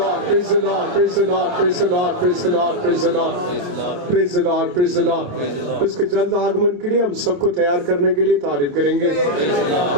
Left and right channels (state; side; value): late; left; 28 ms